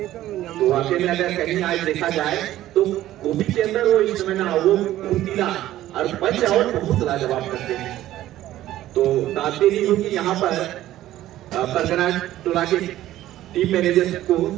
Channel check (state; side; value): quieter; left; 14.1 dB